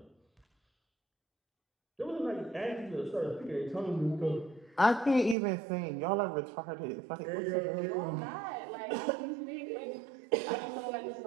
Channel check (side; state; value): left; drops out; at 5.4 s